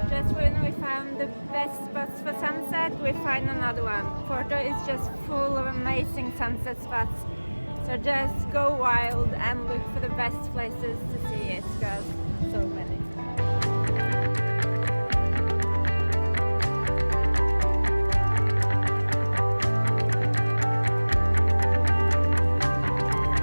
Just when we found the best spots for sunset, we find another one. Porto is just full of amazing sunset spots. So just go wild and look for the best places to see it, because so many.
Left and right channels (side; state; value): both; inverted; correlation -1.00